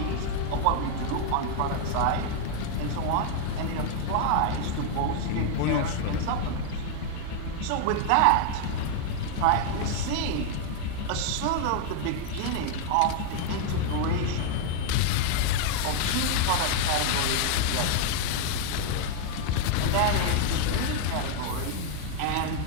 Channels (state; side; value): different; both; correlation 0.00